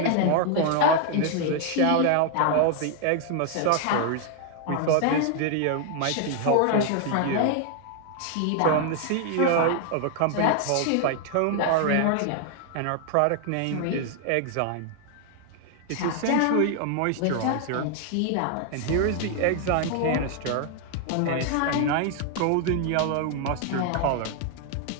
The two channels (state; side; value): different; both; correlation 0.00